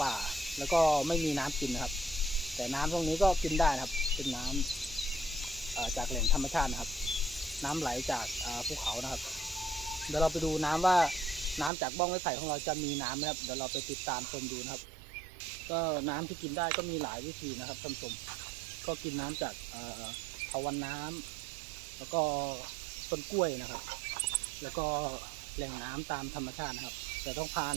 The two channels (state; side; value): drops out; left; at 11.7 s